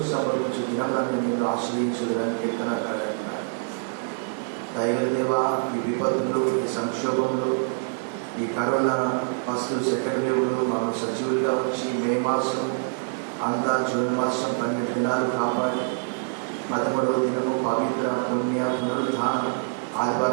సంభవించు దినములను నేను ఆశ్రయించుదని కీర్తనాకారుడు అంటాడు. దయగల దేవా, ఈ విపత్తులు, ఈ సంక్షోభంలో, ఈ కరోనా ఫస్ట్ సెకండ్ వేవ్లో మాకు సజీవులుగా వచ్చి మే మాసం అంతా జూన్ మాసం 12 దినాలు కాపాడి 13వ దినము పవిత్ర పుణ్య పునరుద్ధాన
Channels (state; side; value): silent; left; digital silence